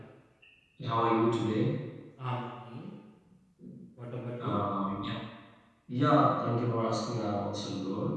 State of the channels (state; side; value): identical; both; correlation 1.00